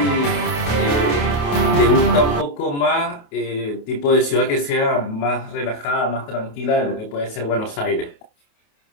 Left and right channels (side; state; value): right; late; 28 ms